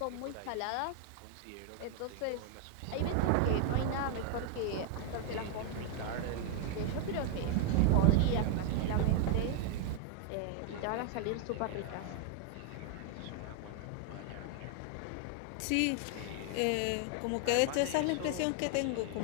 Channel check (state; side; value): different; both; correlation 0.00